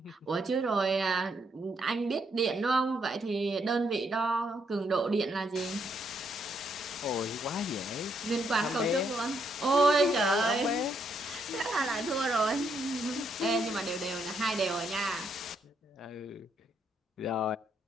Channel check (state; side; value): normal; both; correlation 0.75